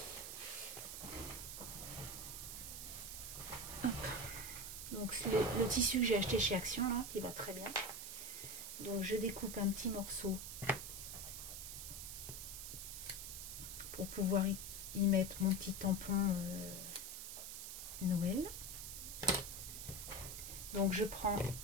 Donc le tissu que j'ai acheté chez Action là, qui va très bien. Donc je découpe un petit morceau pour pouvoir y mettre mon petit tampon Noël. Donc je prends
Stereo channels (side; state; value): right; noise; hiss, 7 dB below the sound